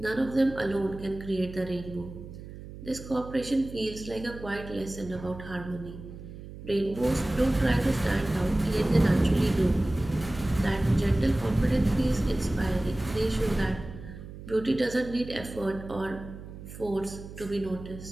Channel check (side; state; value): right; noise; hum, 13 dB below the sound